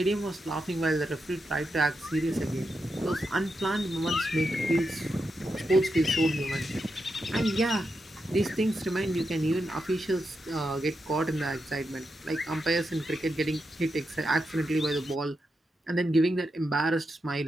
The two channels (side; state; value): both; normal; correlation 0.86